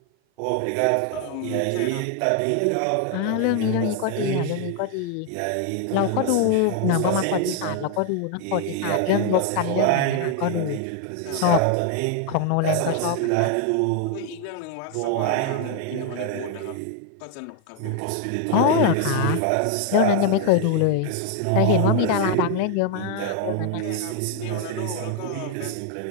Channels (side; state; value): both; different; correlation 0.01